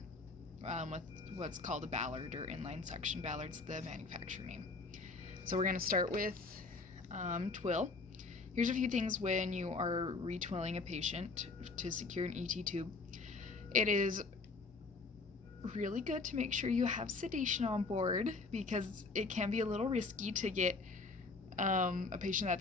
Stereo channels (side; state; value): right; quieter; 3.9 dB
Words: with what's called a ballard or inline suction. Ballard's the manufacturer name. So we're going to start with Twill. Here's a few things when you are retwilling a patient to secure an ET tube. It is really good to make sure you have sedation on board because it can be a little risky to get a patient